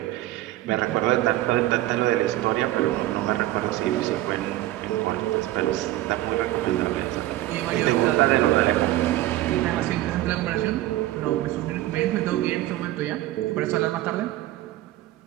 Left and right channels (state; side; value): quieter; left; 15.7 dB